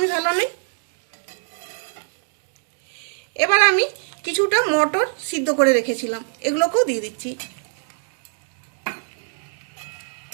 ভালো নেই। এবার আমি কিছুটা মটর সিদ্ধ করে রেখেছিলাম, এগুলোকেও দিয়ে দিচ্ছি।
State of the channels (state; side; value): silent; left; 63 dB below the other